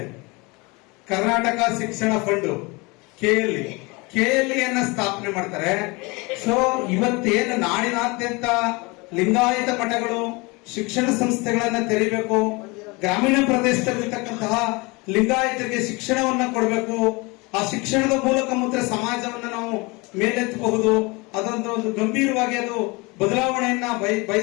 ಕರ್ನಾಟಕ ಶಿಕ್ಷಣ ಫಂಡ್ KLE ಅನ್ನ ಸ್ಥಾಪನೆ ಮಾಡ್ತಾರೆ. ಸೊ ಇವತ್ತೇನು ನಾಡಿನಾದ್ಯಂತ ಲಿಂಗಾಯತ ಮಠಗಳು ಶಿಕ್ಷಣ ಸಂಸ್ಥೆಗಳನ್ನ ತೆರೀಬೇಕು, ಗ್ರಾಮೀಣ ಪ್ರದೇಶದಲ್ಲಿರ್ತಕ್ಕಂತಹ ಲಿಂಗಾಯತರಿಗೆ ಶಿಕ್ಷಣವನ್ನ ಕೊಡಬೇಕು, ಆ ಶಿಕ್ಷಣದ ಮೂಲಕ ಮಾತ್ರ ಸಮಾಜವನ್ನ ನಾವು ಮೇಲೆತ್ತಬಹುದು, ಒಂದು ಗಂಭೀರವಾಗಿ ಅದು ಬದಲಾವಣೆಯನ್ನ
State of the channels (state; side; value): quieter; right; 26.2 dB